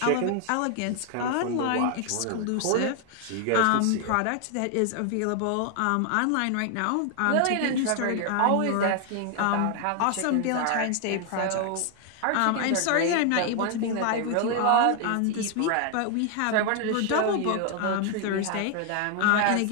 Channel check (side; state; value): both; different; correlation 0.00